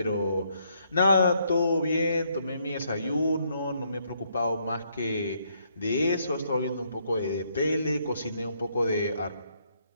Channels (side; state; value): both; inverted; correlation -0.73